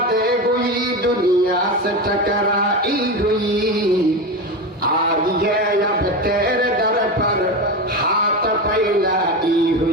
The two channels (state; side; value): normal; both; correlation 0.20